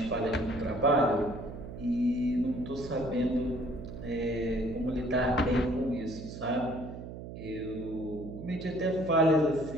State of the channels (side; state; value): right; noise; hum, 10 dB below the sound